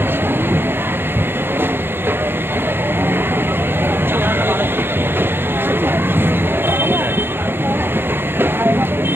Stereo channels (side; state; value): left; late; 0.10 ms